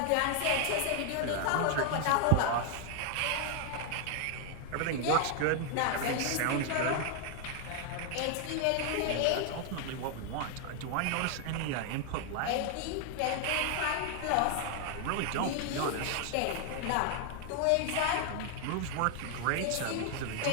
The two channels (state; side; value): different; both; correlation 0.00